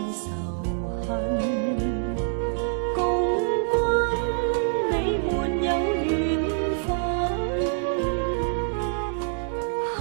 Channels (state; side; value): silent; left; 61 dB below the other